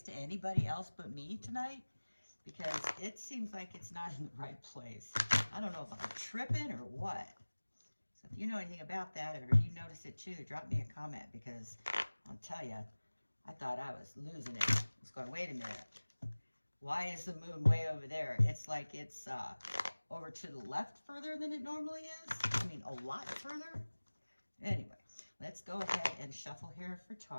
to anybody else but me tonight? Because it seems like it's not in the right place. I don't know if I'm tripping or what. So if you know anything about that, or you notice it too, drop me a comment, because I'll tell you, I thought I was losing it. I was going, wait a minute. Why is the moon way over there? It's like it's over to the left further than it normally is. I mean, a lot further. Anyway, let's go ahead and shuffle here for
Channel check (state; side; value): inverted; both; correlation -1.00